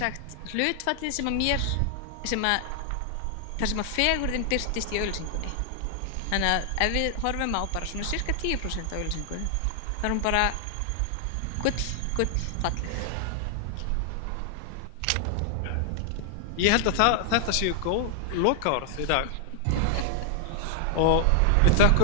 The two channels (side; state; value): both; different; correlation 0.00